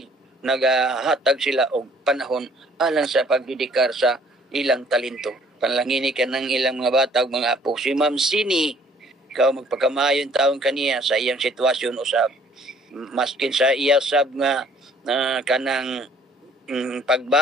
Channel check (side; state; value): both; normal; correlation 0.58